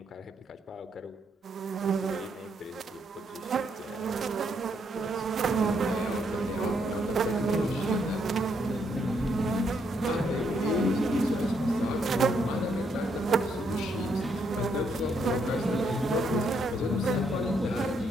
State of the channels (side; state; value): both; normal; correlation 0.75